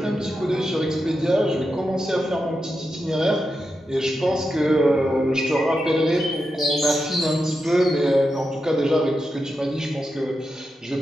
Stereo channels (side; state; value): both; normal; correlation 0.88